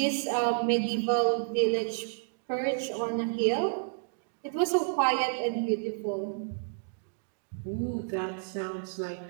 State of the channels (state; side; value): silent; left; digital silence